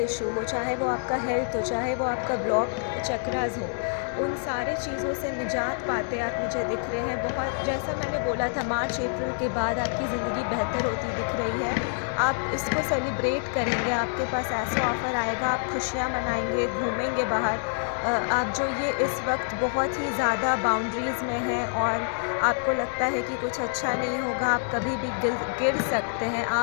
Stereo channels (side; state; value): right; silent; digital silence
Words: इशू हो, चाहे वो आपका हेल्थ हो, चाहे वो आपका ब्लॉक चक्रास हो, उन सारे चीज़ों से निजात पाते आप मुझे दिख रहे हैं। बहुत, जैसा मैंने बोला था, मार्च अप्रैल के बाद आपकी ज़िंदगी बेहतर होती दिख रही है। आप इसको सेलिब्रेट करेंगे, आपके पास ऐसा ऑफ़र आएगा, आप खुशियाँ मनाएंगे, घूमेंगे बाहर। आप जो ये इस वक्त बहुत ही ज़्यादा बाउंड्रीज़ में हैं और आपको लगता है कि कुछ अच्छा नहीं होगा, आप कभी भी गिर सकते हैं,